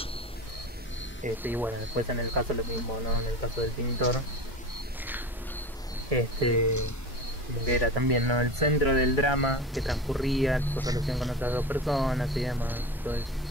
Y bueno, después en el caso lo mismo, ¿no? En el caso del pintor, como que era también, ¿no? El centro del drama que transcurría, su relación con otras dos personas y demás, todo eso.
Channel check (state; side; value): normal; both; correlation 0.30